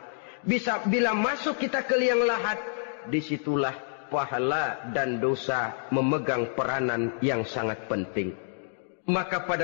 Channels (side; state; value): right; silent; digital silence